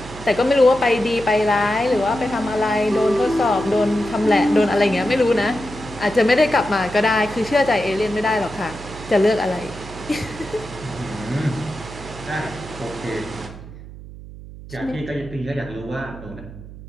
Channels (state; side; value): noise; right; hum, 15 dB below the sound